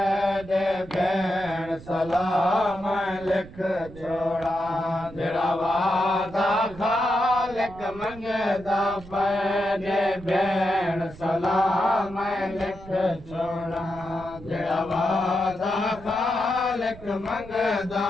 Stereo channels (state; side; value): noise; right; rumble, 17 dB below the sound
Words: भेण सलाम लिख छोड़ा जड़ा वादा खालक मंगदा पैदे भेण सलाम लिख छोड़ा जड़ा वादा खालक मंगदा